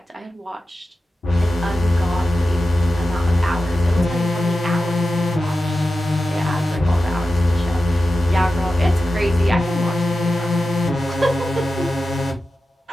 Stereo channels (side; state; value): both; normal; correlation 0.92